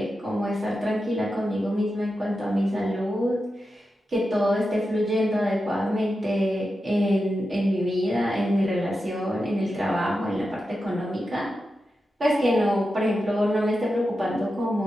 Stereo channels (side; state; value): both; normal; correlation 0.90